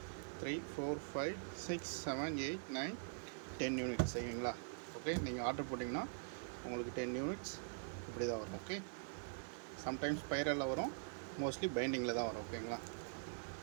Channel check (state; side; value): silent; left; digital silence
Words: 3 4 5 6 7 8 9 10 யூனிட்ஸ் சரிங்களா. ஓகே, நீங்கள் ஆர்டர் போட்டிங்கன்னா உங்களுக்கு 10 யூனிட்ஸ் இப்படி தான் வரும். ஓகே, சம்டைம்ஸ் ஸ்பைரலில் வரும், மோஸ்ட்லி பைண்டிங்கில் தான் வரும். ஓகேங்களா.